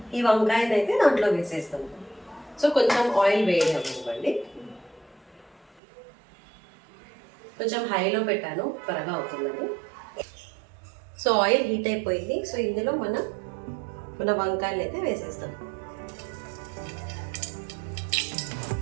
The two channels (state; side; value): drops out; left; at 5.8 s